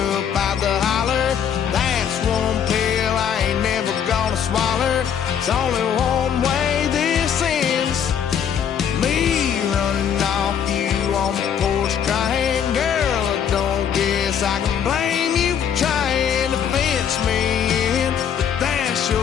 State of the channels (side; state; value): right; quieter; 8.3 dB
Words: out the holler. That's one pill I ain't never gonna swallow. It's only one way this ends. Me running off you on the porch crying. Girl, I don't guess I can blame you for trying to fence me in, but that's